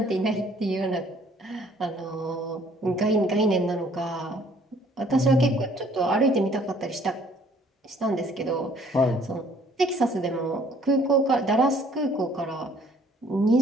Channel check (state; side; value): normal; both; correlation 0.59